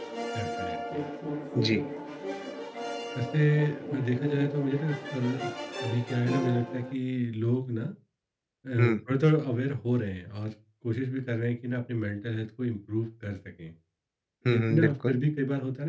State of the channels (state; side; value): identical; both; correlation 1.00